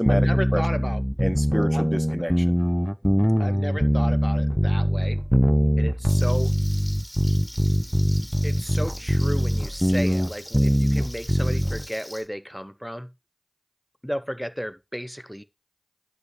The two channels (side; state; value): both; identical; correlation 1.00